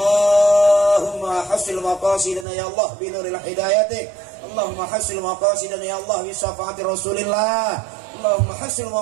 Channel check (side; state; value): left; drops out; at 2.5 s